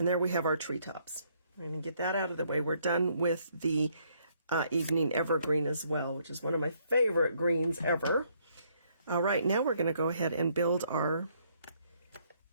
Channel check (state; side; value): inverted; both; correlation -0.69